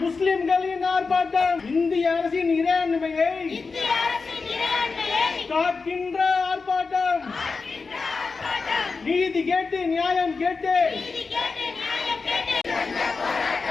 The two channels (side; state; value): right; quieter; 4.5 dB